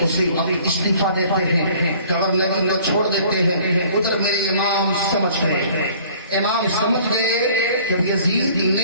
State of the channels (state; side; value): inverted; both; correlation -0.52